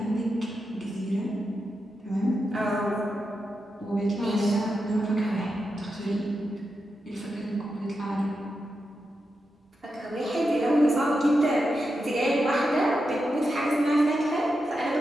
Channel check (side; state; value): both; normal; correlation 0.88